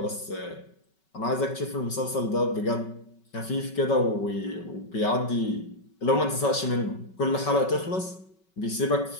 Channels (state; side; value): late; right; 5.3 ms